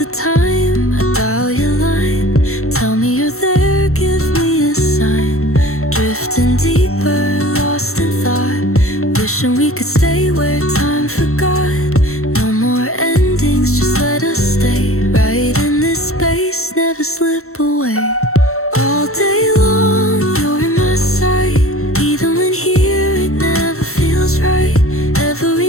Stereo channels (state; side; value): late; right; 0.63 ms